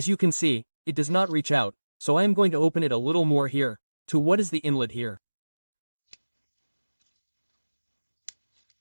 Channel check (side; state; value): both; inverted; correlation -1.00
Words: you can see, it does not reach out, so I am going to open it a little more here, to what is the inlet here.